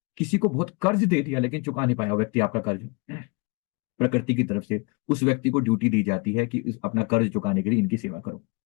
किसी को बहुत कर्ज दे दिया लेकिन चुका नहीं पाया व्यक्ति आपका कर्ज, प्रकृति की तरफ से उस व्यक्ति को ड्यूटी दी जाती है कि अपना कर्ज चुकाने के लिए इनकी सेवा करो,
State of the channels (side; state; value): right; quieter; 30.7 dB